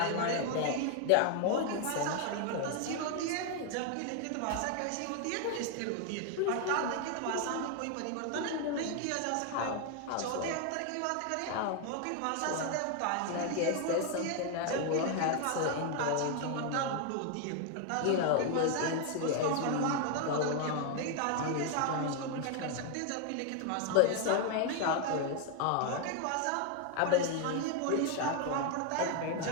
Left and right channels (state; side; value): different; both; correlation 0.01